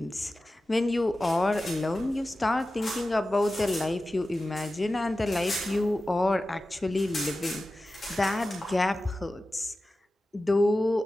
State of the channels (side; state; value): both; normal; correlation 0.94